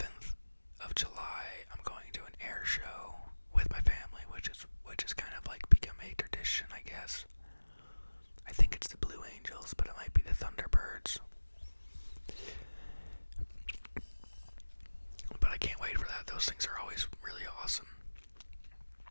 of July, I'm going to an air show with my family, which is kind of like become a tradition, I guess. I think it's the Blue Angels, but it might be the Thunderbirds. But I can't wait for that. Those things are always really awesome.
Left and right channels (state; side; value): inverted; both; correlation -1.00